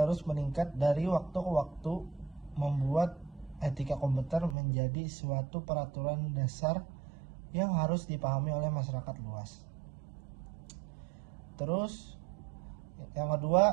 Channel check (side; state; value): left; drops out; at 4.5 s